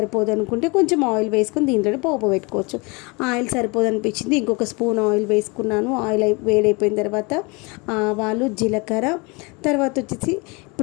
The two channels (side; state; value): right; quieter; 28.2 dB